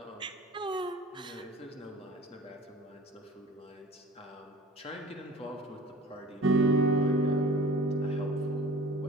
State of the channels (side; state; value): both; normal; correlation 0.42